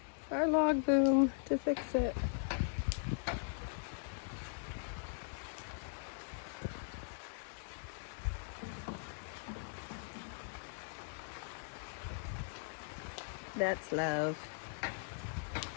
our log boom to fix it. That's love.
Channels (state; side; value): silent; right; digital silence